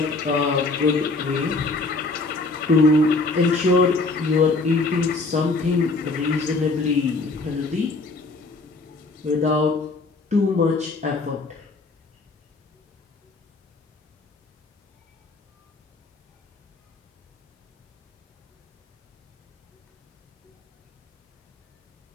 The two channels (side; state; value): right; quieter; 3.5 dB